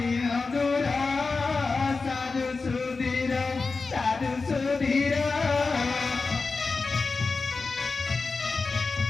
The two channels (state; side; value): quieter; right; 4.1 dB